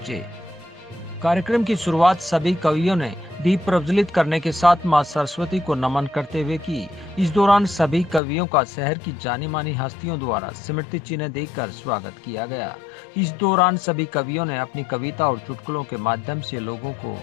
कार्यक्रम की शुरुआत सभी कवियों ने दीप प्रज्वलित करने के साथ मां सरस्वती को नमन करते हुए की। इस दौरान सभी कवियों का शहर की जानी मानी हस्तियों द्वारा स्मृति चिन्ह देकर स्वागत किया गया। इस दौरान सभी कवियों ने अपनी कविता और चुटकुलों के माध्यम से लोगों को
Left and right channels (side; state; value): right; drops out; at 8.2 s